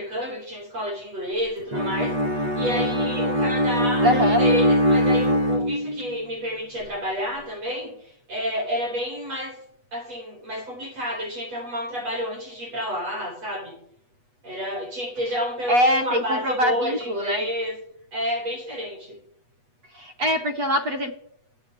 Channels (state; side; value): late; left; 8.2 ms